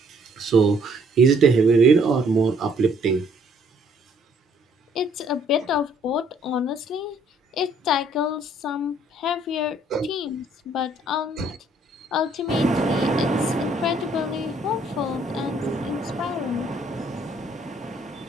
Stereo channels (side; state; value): both; normal; correlation 0.64